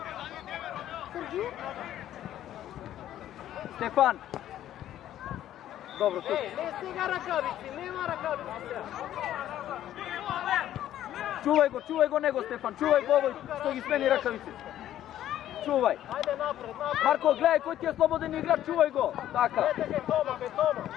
Герги. Стефан! Добро, тук. Еј, не стига ракавици, нема ракавици сега. Чувај го него, Стефан, чувај го овој што ги смени ракавици. Чувај. Ајде напред. Марко, гледај кој ти е слободен играч, чувај го. Така. Ете ке Тома.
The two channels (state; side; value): quieter; right; 12.1 dB